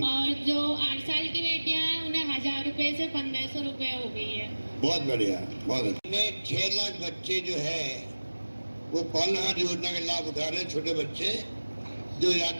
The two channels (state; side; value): inverted; both; correlation -1.00